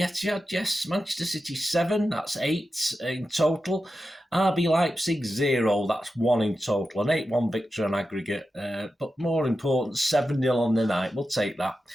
Yes, Manchester City 7, that's 8 in total. RB Leipzig 0, that's 1 in total. An 8-1 victory on aggregate, but more important, 7-0 on the night. We'll take that.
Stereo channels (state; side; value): normal; both; correlation 0.91